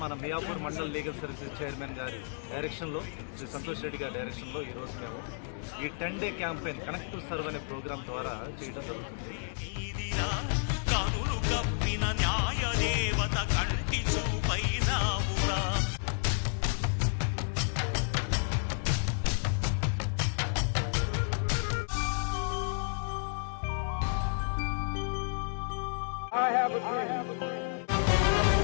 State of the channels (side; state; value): right; silent; digital silence